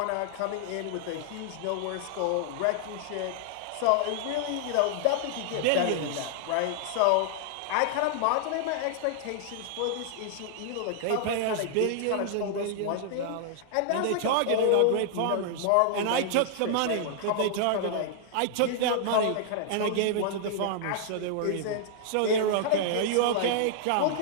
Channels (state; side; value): different; both; correlation -0.01